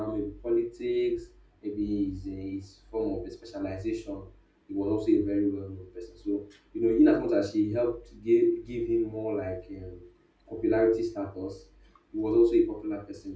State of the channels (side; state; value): both; identical; correlation 1.00